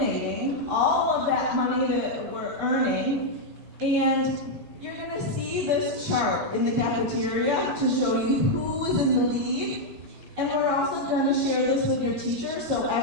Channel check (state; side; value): normal; both; correlation -0.01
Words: all of that money that we're earning, and you're going to see this chart in the cafeteria to show you who is in the lead. And we're also going to share this with your teacher, so